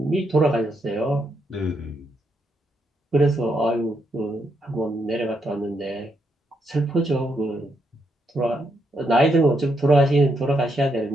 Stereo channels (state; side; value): normal; both; correlation 0.78